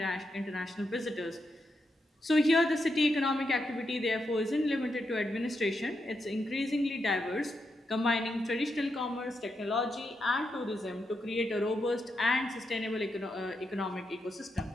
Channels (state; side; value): normal; both; correlation 0.84